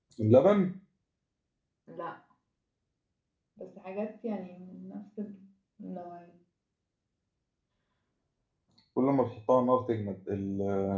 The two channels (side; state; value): both; identical; correlation 1.00